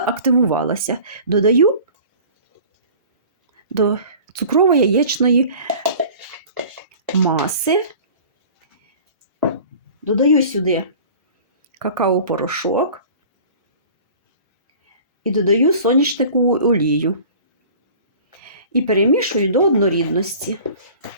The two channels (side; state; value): both; inverted; correlation -0.44